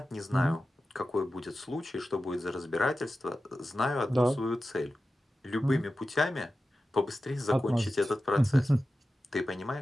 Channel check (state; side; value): normal; both; correlation 0.93